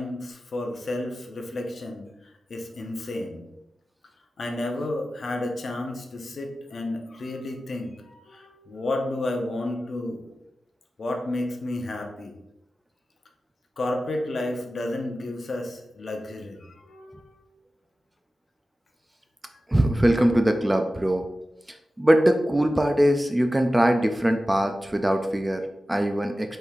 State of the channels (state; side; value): normal; both; correlation 0.95